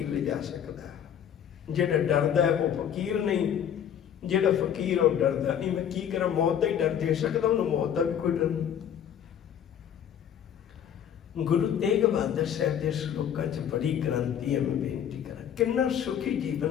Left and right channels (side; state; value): right; quieter; 9.1 dB